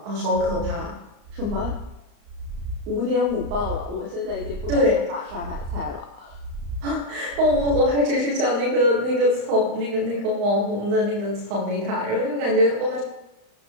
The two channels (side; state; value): left; late; 35 ms